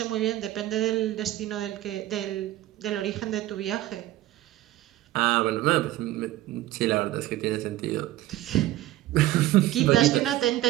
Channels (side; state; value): left; quieter; 15.1 dB